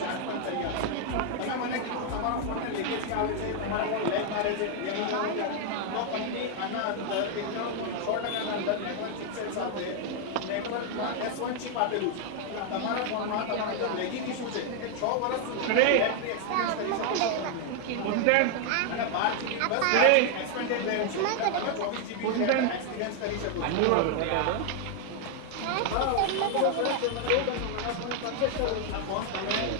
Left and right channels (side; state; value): both; different; correlation 0.00